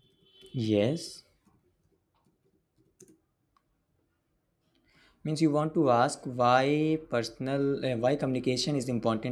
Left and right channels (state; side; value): identical; both; correlation 1.00